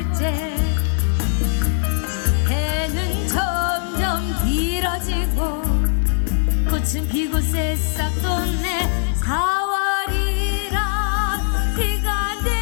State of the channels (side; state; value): right; silent; digital silence